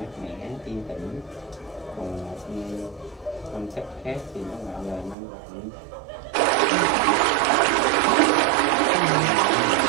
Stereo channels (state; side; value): drops out; left; at 5.2 s